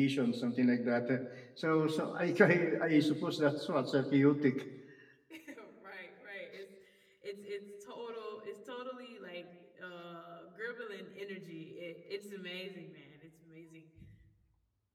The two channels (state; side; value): identical; both; correlation 1.00